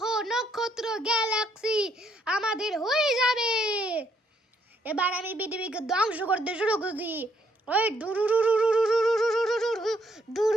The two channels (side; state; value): both; normal; correlation 0.71